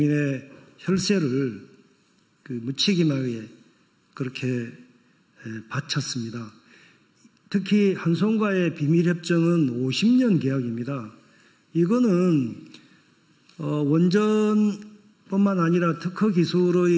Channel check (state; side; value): identical; both; correlation 1.00